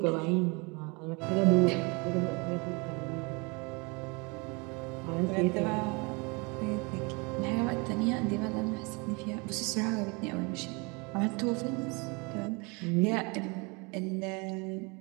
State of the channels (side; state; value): left; quieter; 29.2 dB